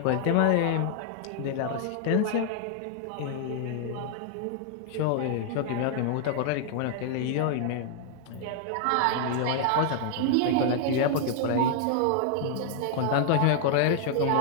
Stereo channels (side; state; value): both; different; correlation 0.00